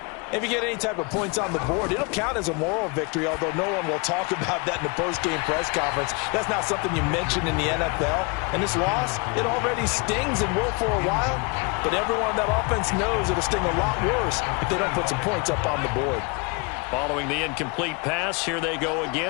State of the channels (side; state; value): right; quieter; 30.1 dB